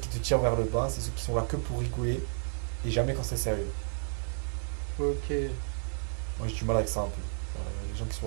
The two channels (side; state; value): left; silent; digital silence